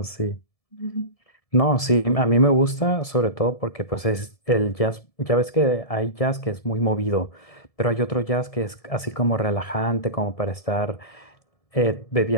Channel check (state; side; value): late; right; 1.7 ms